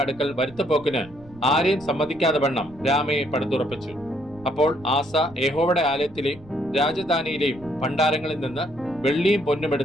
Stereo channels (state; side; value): noise; right; rumble, 22 dB below the sound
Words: അടുക്കൽ വരുത്തപ്പോക്കിന് ആരെയും സമ്മതിക്കാതെ വണ്ണം രാമയെ പടുത്തുറപ്പിച്ചു. അപ്പോൾ ആസ യഹോവയുടെ ആലയത്തിലെയും രാജധാനിയിലെയും ഭണ്ഡാരങ്ങളിൽ നിന്ന് വെള്ളിയും പൊന്നും